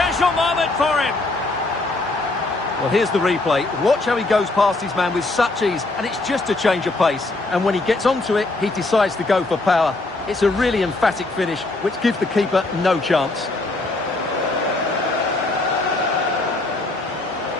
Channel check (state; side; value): quieter; right; 3.1 dB